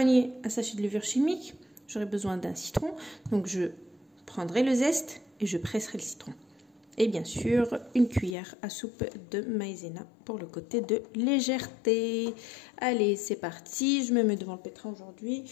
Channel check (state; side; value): drops out; right; at 8.3 s